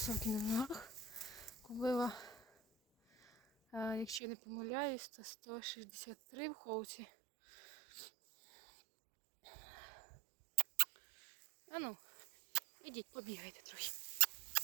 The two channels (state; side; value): drops out; left; at 4.2 s